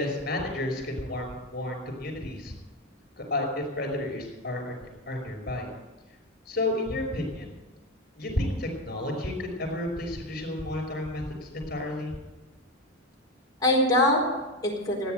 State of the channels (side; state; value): both; normal; correlation 0.17